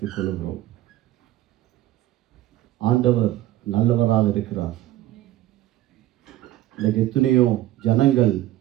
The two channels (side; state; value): left; quieter; 14.4 dB